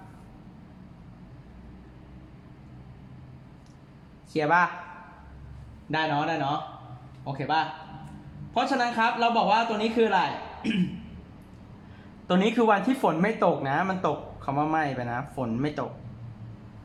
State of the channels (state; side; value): identical; both; correlation 1.00